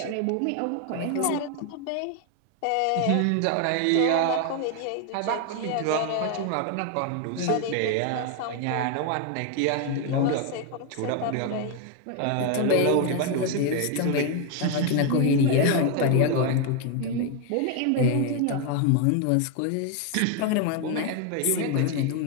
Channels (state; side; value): different; both; correlation 0.01